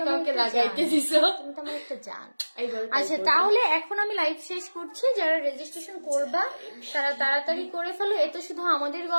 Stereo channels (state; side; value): inverted; both; correlation -1.00